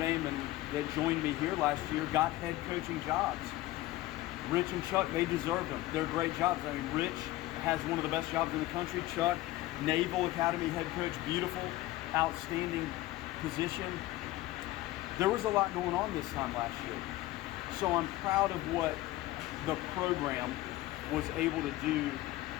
and that joined me here last year got head coaching jobs. Rich and Chuck, they deserved them. They're great jobs. I mean, Rich has one of the best jobs in the country. Chuck, Naval Academy head coach, beautiful, outstanding position. There was a lot going on this time last year. So I'm proud of what the program was able to do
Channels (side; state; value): right; quieter; 17.1 dB